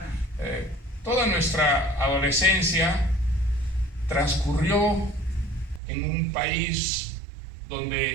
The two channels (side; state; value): left; drops out; at 5.8 s